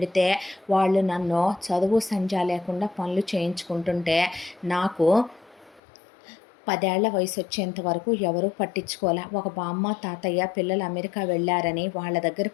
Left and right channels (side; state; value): right; drops out; at 5.8 s